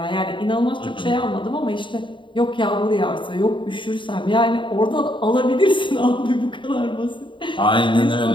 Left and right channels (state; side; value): late; right; 0.24 ms